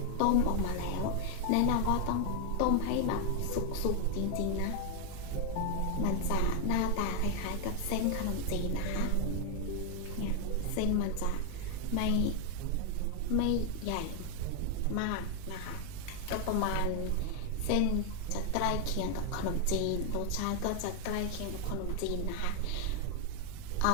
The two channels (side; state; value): both; different; correlation 0.00